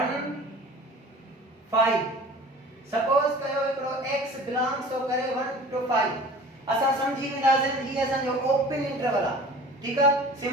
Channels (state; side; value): normal; both; correlation 0.42